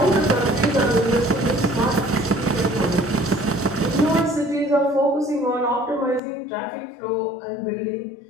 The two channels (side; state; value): right; drops out; at 6.2 s